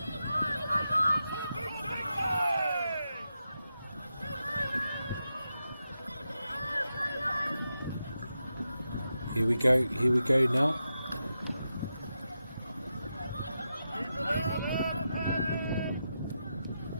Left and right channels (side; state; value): both; inverted; correlation -0.88